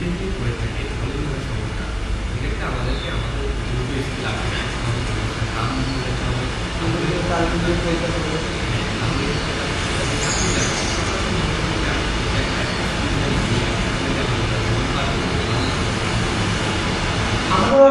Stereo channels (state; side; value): identical; both; correlation 1.00